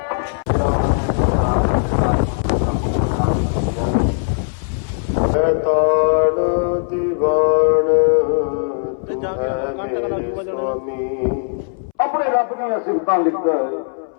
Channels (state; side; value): silent; right; 65 dB below the other